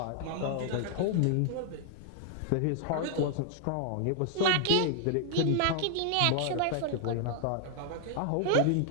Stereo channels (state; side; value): different; both; correlation 0.00